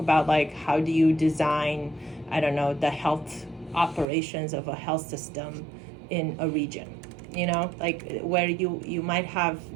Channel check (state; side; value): drops out; left; at 4.0 s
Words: like how do you design, I don't know, the health operations of a health system in a region. You know, like where you might